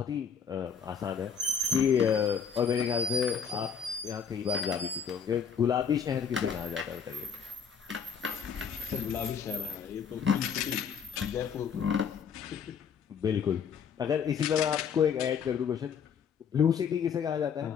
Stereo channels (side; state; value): right; quieter; 6.8 dB